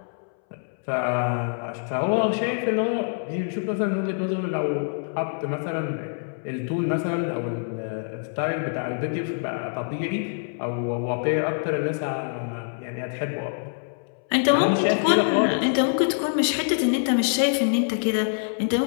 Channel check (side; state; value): right; silent; 61 dB below the other